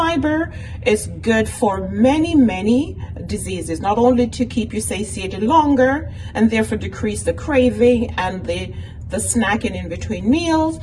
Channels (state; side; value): identical; both; correlation 1.00